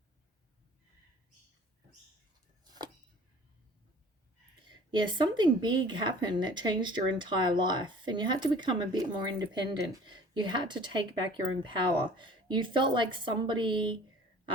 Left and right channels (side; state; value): both; normal; correlation 0.48